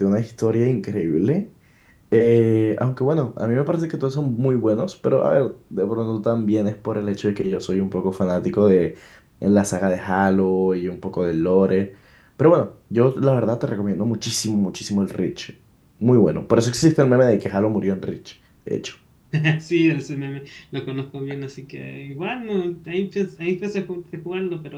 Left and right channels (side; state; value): both; identical; correlation 1.00